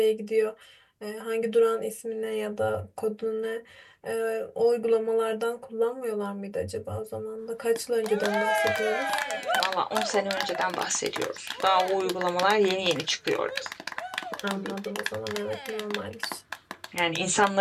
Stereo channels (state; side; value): identical; both; correlation 1.00